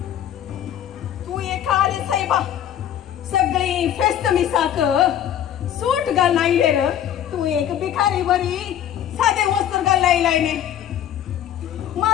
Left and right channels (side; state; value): right; quieter; 10.6 dB